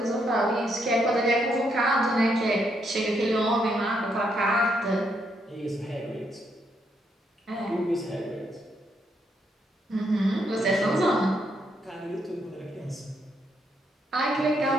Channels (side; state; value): both; normal; correlation 0.76